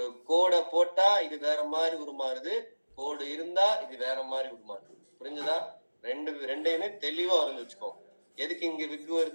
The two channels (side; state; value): both; inverted; correlation -1.00